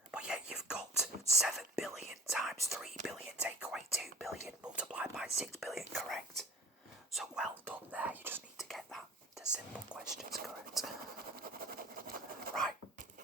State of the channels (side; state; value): both; normal; correlation 0.40